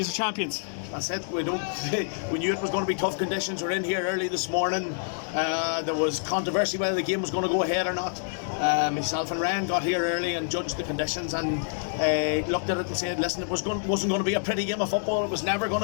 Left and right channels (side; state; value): right; silent; digital silence